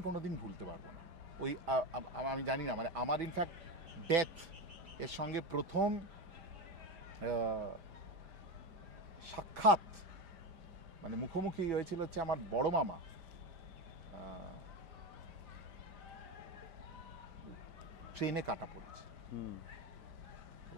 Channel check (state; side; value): late; left; 5.0 ms